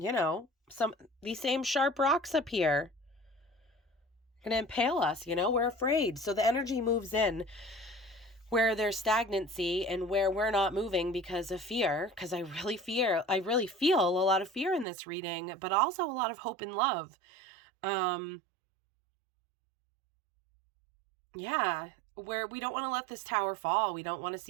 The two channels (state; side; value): drops out; left; at 14.9 s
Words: these same sharp rocks up here are going to impale us, we're afraid. So the energy moves in where there's stagnancy and where we're not moving because of fear, because I really feel a lot of fear in this reading, but also a lot of hope and love. Yeah, where we don't want to let this tower fall. We don't want to